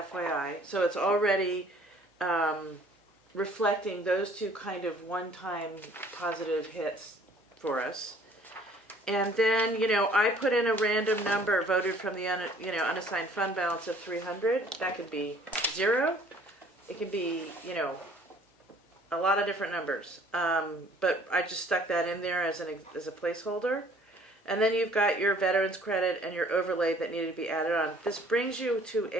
So it's already reflecting those two kind of one-time positive hits for us. And then, I put in a random number voted from the unassigned fund balance of 300. That could be 0. It could be, a lot of different numbers. But I just stuck that in there as a placeholder. And then you've got your veterans credit and your overlay that needed to be added on. This brings you to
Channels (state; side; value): normal; both; correlation 0.56